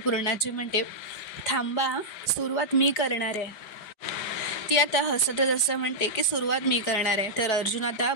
म्हणते, थांबा, सुरुवात मी करणार आहे. ती आता हसतच असं म्हणते की सुरुवात मी करणार आहे. तर अर्जुन आता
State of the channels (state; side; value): late; right; 4.8 ms